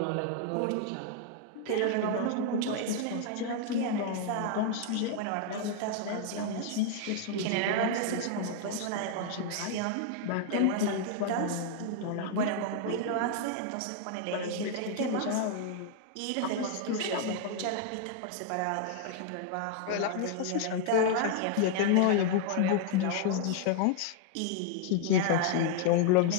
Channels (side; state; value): both; different; correlation 0.00